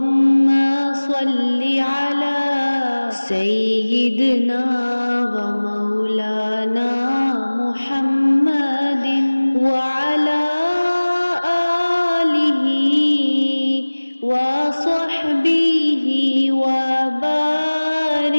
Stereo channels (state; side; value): inverted; both; correlation -1.00